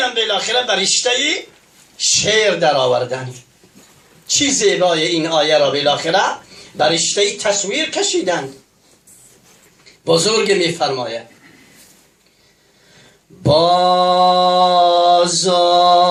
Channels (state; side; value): identical; both; correlation 1.00